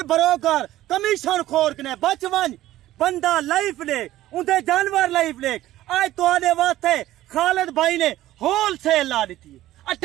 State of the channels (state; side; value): quieter; left; 14.7 dB